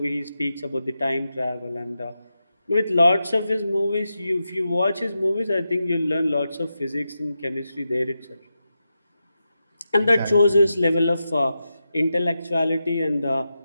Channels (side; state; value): both; inverted; correlation -0.89